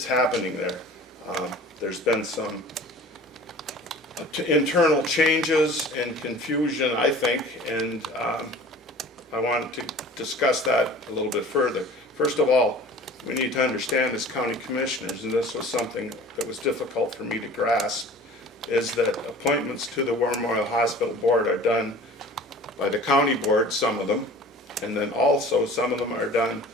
happening there. There's been some internal changes and confusion, I think, and I wanted to discuss that a little bit further. First of all, we need to understand as county commissioners, and this was something that was difficult for me to grasp, is that appointments to the War Memorial Hospital Board are done by the county board, some of them, and then also some of them are done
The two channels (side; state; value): both; normal; correlation 0.44